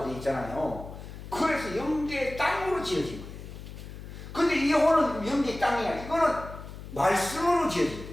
되어 있잖아요. 그래서 영계의 땅으로 지어진 거예요. 근데 이 혼은 영계의 땅이 아니라 이거는 말씀으로 지어진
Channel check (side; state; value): left; noise; hum, 12 dB below the sound